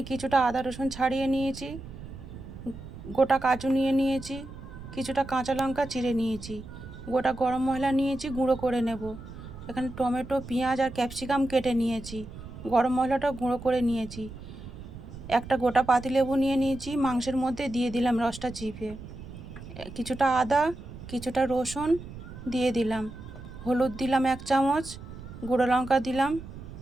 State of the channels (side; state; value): right; noise; rumble, 13 dB below the sound